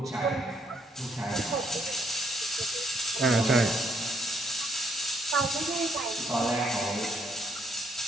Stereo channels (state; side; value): normal; both; correlation 0.71